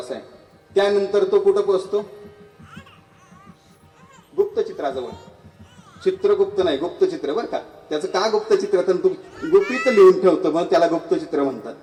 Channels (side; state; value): both; identical; correlation 1.00